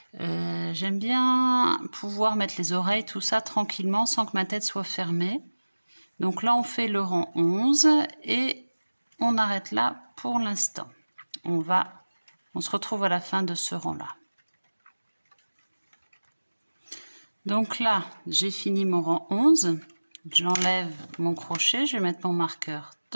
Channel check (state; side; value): inverted; both; correlation -1.00